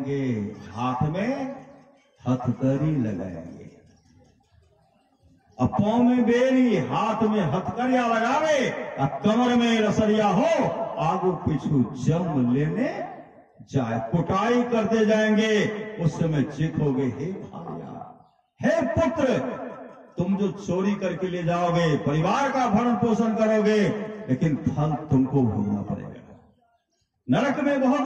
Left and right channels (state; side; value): identical; both; correlation 1.00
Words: हाथ में हथकड़ी लगाएंगे, पांव में बेरी, हाथ में हथकड़िया लगावे, कमर में रसरिया हो, आगू पीछू जम लेने जाए, कुटाई करते जाएंगे। उस समय चीखोगे, हे भार्या, हे पुत्र, तुम जो चोरी करके ले जाओगे, परिवार का भरण पोषण करोगे, लेकिन फल तुमको भोगना पड़ेगा, नरक में